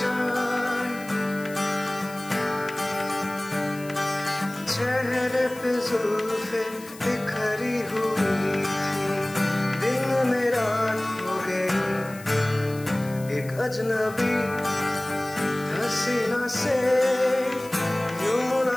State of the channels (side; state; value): left; noise; hiss, 19 dB below the sound